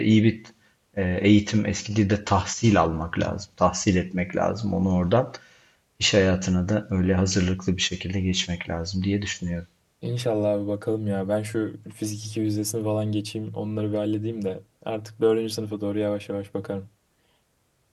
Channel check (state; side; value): identical; both; correlation 1.00